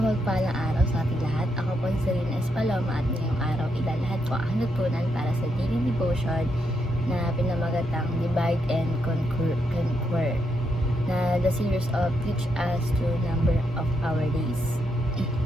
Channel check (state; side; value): normal; both; correlation 0.80